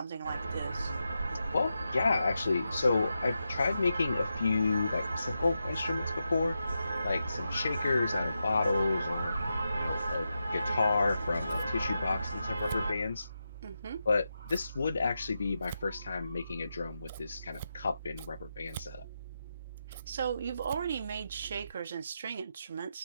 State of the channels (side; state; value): both; inverted; correlation -0.87